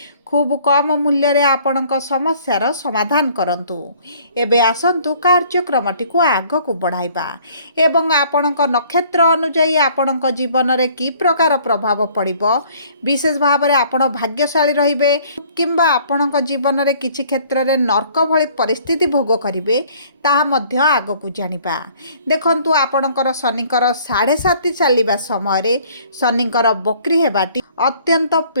खूब कम मूल्य रे आपणक समस्यार समाधान करंतु। एबे आसंतु कार्यक्रमटी को आगकु बढ़ाइबा एवं आपणक नक्षत्र अनुଯାୟୀ आपणक जीवन रे की प्रकार प्रभाव पड़िबो, विशेष भाव रे आपण भाग्यशाली रहिबे किंबा आपणक जीवन रे किछि क्षेत्र रे नर्क भଳି परिस्थिति भोग करिवे ताहा मध्य आगकु जानिबा। देखंतु आपणकर शनिकर 7.5 चलिबा समय रे शनिकर बक्री हेबाटी अत्यंत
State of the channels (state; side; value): inverted; both; correlation -0.57